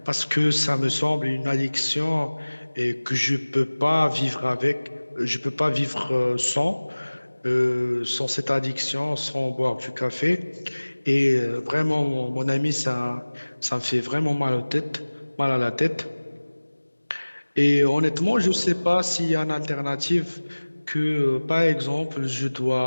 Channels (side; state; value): both; inverted; correlation -1.00